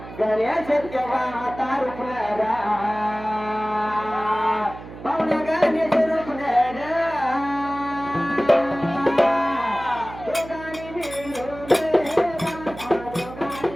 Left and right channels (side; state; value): right; noise; hum, 14 dB below the sound